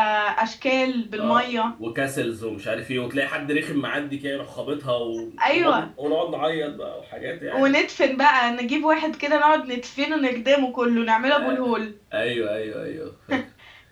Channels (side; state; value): both; identical; correlation 1.00